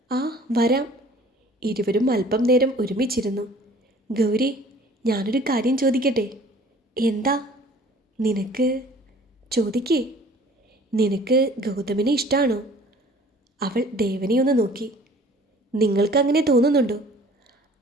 ആ വരാം. ഇരുവരും അല്പം നേരം ഒരുമിച്ചിരുന്നു. ഗൗരി, ഞാനൊരു കാര്യം ചോദിക്കട്ടെ? എന്താ? നിനക്ക് ചോദിക്കേ. നിനക്ക് ഗൗതമിനെ ഇഷ്ടമാണോ? അവൾ ദേവനെ ഒന്ന് നോക്കി. നിങ്ങൾക്കങ്ങനെ തോന്നുന്നുണ്ടോ?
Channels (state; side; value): normal; both; correlation 0.50